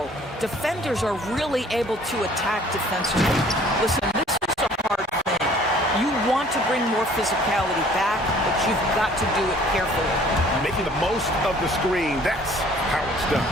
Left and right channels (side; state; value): both; normal; correlation 0.55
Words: defenders are really able to attack defensively. Listen, this is a hard thing. You want to bring more physicality back, but you've got to do it carefully. Making the most of the screen, that's how it's done.